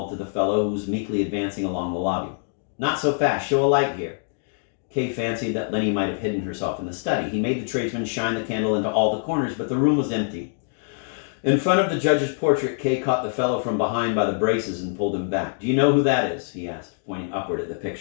to the fellow who was meekly advancing along the lobby. "Not so fast. Show a light here." Kay fancied that Lenny might have hidden herself in the study. He made the tradesman shine the candle into all the corners, but the room was empty. In front of the judge's portrait, Kay caught the fellow from behind by the braces and pulled him back. "Do you know who that is?" he asked, pointing upward at the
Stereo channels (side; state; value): right; silent; digital silence